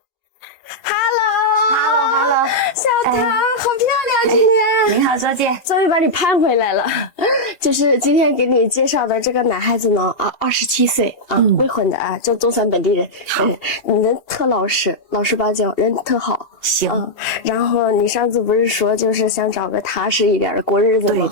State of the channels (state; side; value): late; right; 2.8 ms